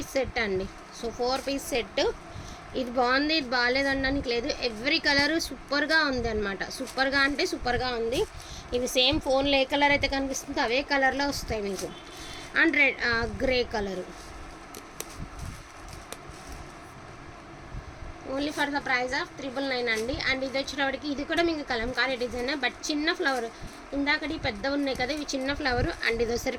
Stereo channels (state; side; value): identical; both; correlation 1.00